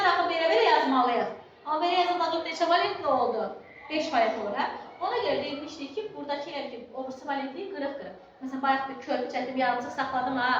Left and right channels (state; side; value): identical; both; correlation 1.00